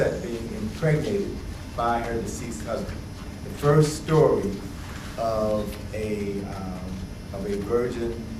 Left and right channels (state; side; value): identical; both; correlation 1.00